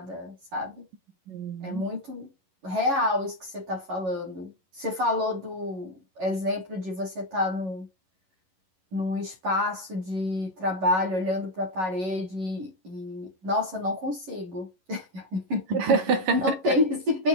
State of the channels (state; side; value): late; left; 11 ms